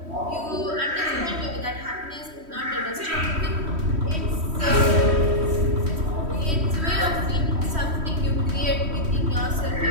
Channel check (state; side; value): late; left; 3.1 ms